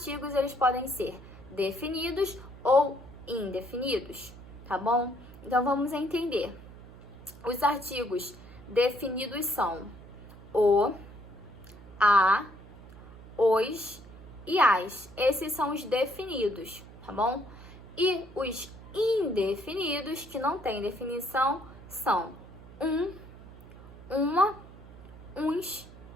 eles podem ser definidos ou indefinidos, tá bom? Então, vamos entender. Os artigos definidos são o, a, os e as. Esses são os definidos, tá bom? E os indefinidos, que não têm definição, são uma, uns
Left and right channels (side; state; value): right; noise; hum, 18 dB below the sound